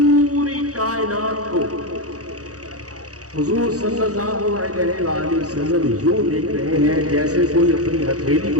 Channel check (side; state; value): left; late; 0.66 ms